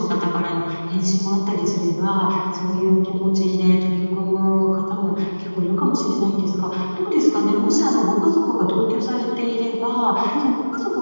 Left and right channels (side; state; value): both; inverted; correlation -1.00